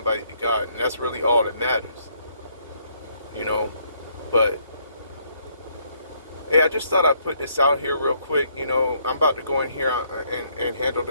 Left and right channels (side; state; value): both; inverted; correlation -0.69